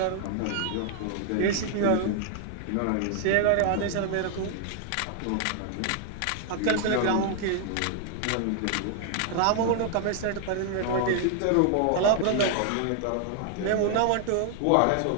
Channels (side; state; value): both; different; correlation 0.00